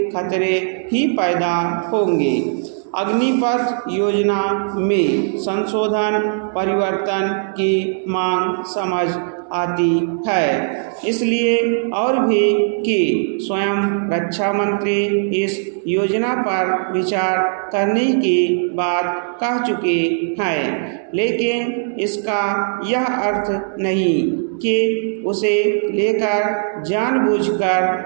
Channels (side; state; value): left; silent; digital silence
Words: खतरे ही पैदा होंगे। अग्निपथ योजना में संशोधन परिवर्तन की मांग समझ आती है, इसलिए और भी कि स्वयं रक्षा मंत्री इस योजना पर विचार करने की बात कह चुके हैं, लेकिन इसका यह अर्थ नहीं कि उसे लेकर